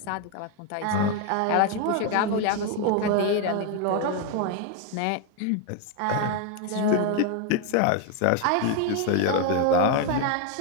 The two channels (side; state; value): both; different; correlation 0.01